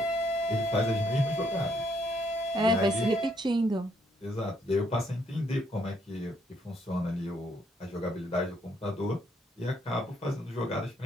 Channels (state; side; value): normal; both; correlation 0.71